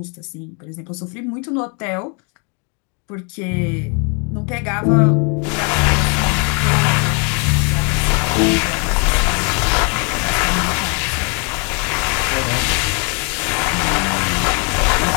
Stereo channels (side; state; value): right; quieter; 36.4 dB